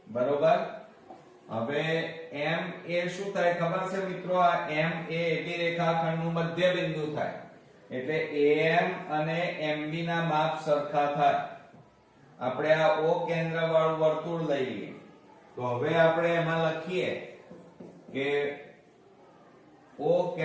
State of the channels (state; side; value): identical; both; correlation 1.00